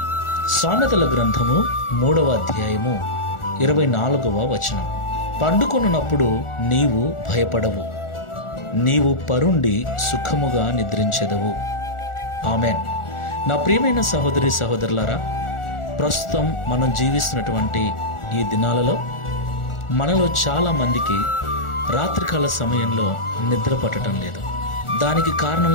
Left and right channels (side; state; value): right; late; 1.4 ms